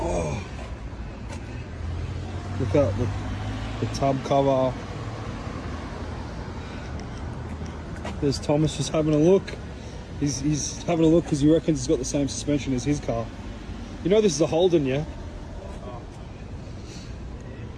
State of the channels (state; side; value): identical; both; correlation 1.00